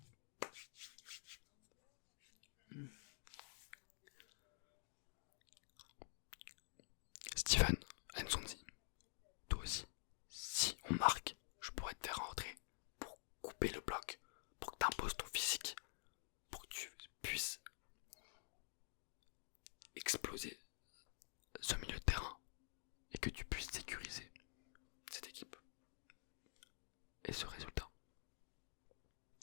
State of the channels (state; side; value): silent; right; digital silence